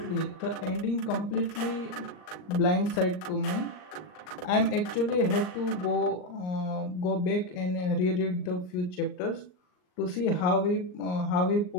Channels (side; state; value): right; late; 39 ms